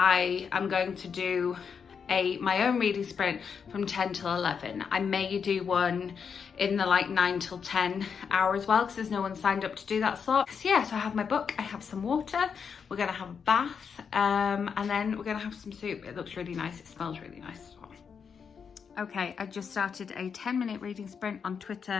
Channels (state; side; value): quieter; right; 6.5 dB